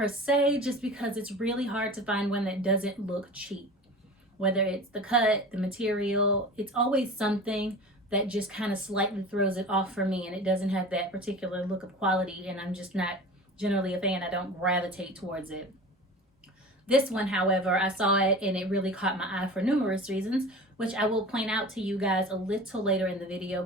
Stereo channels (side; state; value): both; normal; correlation 0.36